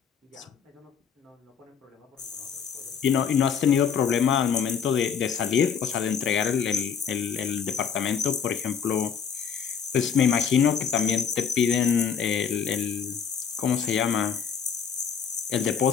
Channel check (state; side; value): quieter; right; 7.1 dB